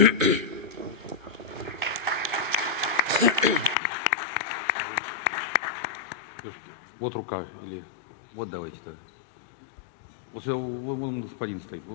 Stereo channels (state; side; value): drops out; right; at 3.8 s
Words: Вот рука, или вот давайте-то. Вот вон господин стоит.